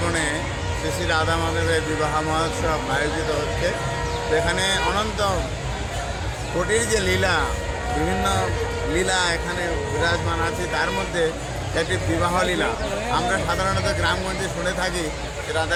বনে শ্রী শ্রী রাধা মাধবের বিবাহ মহোৎসব আয়োজিত হচ্ছে। এখানে অনন্ত কোটির যে লীলা, বিভিন্ন লীলা এখানে বিরাজমান আছে। তার মধ্যে একটি বিবাহ লীলা। আমরা সাধারণত গ্রামগঞ্জে শুনে থাকি যে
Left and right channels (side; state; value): both; identical; correlation 1.00